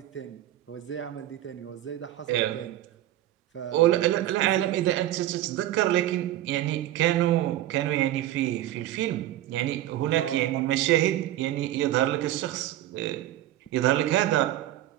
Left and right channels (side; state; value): left; quieter; 13.8 dB